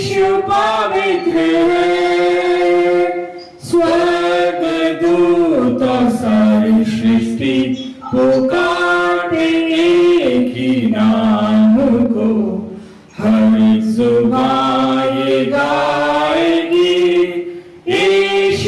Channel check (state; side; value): identical; both; correlation 1.00